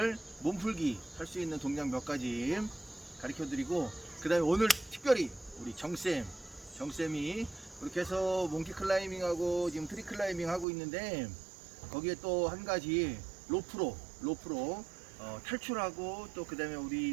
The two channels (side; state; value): left; drops out; at 10.7 s